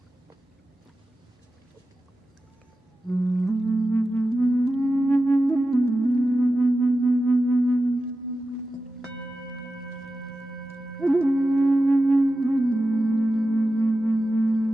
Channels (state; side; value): normal; both; correlation 0.92